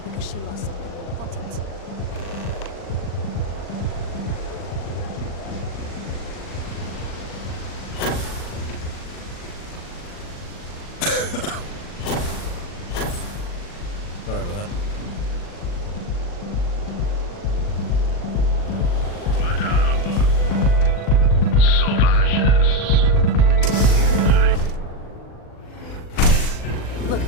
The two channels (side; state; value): right; late; 40 ms